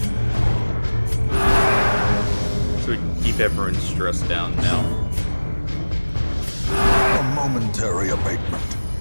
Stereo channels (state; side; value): inverted; both; correlation -1.00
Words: So we can keep everyone's stress down now. A momentary abatement.